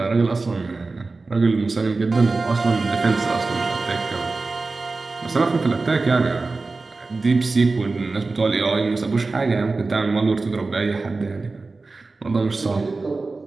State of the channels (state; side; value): quieter; left; 3.7 dB